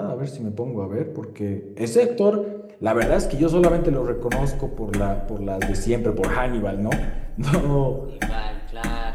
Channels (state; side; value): identical; both; correlation 1.00